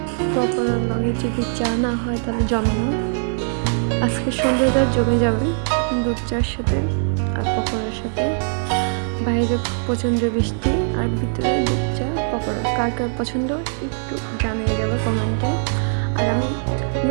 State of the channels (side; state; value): left; silent; digital silence